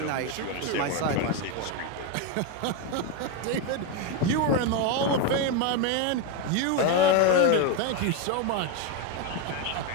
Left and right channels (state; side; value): different; both; correlation 0.03